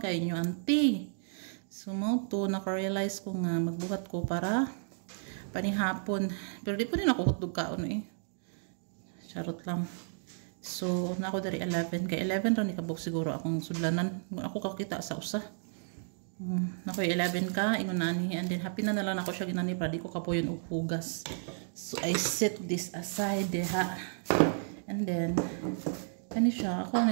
kayo nyo, auntie. So, mo to, naka-realize ko nga magbuhat ko para panihapon. Pero di po rin ako hotdog kaon eh. Charot lang. So, na ako dari 11. Kay 11 ron ikabok siguro akong sudlanan. Ako kakita sa usa. Nakoy 11 ka, ingon nani. And then, happy na nalang ako siya ginani para di ko kapoyon og hugas. So, I set this aside deha. And then, kani siya. Ako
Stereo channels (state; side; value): silent; left; digital silence